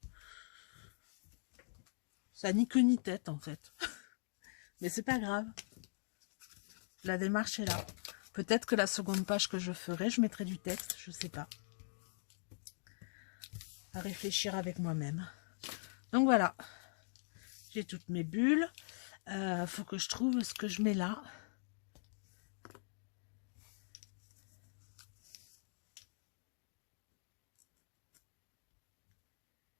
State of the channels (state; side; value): silent; right; digital silence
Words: ni queue ni tête en fait. Mais c'est pas grave. La démarche est là. Peut-être que la seconde page que je ferai, je mettrai du texte, je sais pas. À réfléchir avec moi-même. Donc voilà. J'ai toutes mes bulles. Faut que je trouve ce que je mets là.